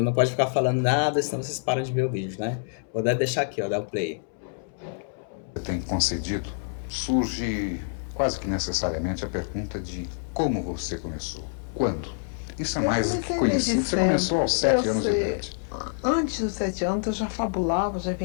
Não pode ficar falando nada, senão vocês param de ver o vídeo, né? Vou deixar aqui, ó, dar o play. tem concedido, surge quase que necessariamente a pergunta de como você começou, quando. Isso é mais do que conhecido. Você começou aos 7 anos de idade. Antes dos 7 anos eu já fabulava, já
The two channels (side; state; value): right; silent; 60 dB below the other